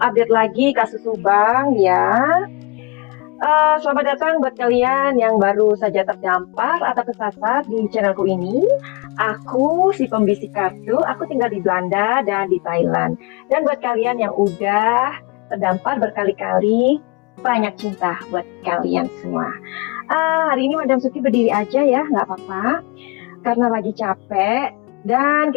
lagi kasus Subang ya. Selamat datang buat kalian yang baru saja terdampar atau kesasar di channelku ini. Aku si pembisik kartu, aku tinggal di Belanda dan di Thailand. Dan buat kalian yang udah terdampar berkali-kali, banyak cinta buat kalian semua. Hari ini Madam Suki berdiri aja ya, nggak apa-apa. Karena lagi capek dan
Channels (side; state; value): right; quieter; 26.5 dB